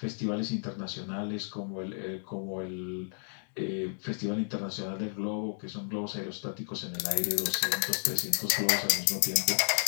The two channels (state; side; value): silent; right; 56 dB below the other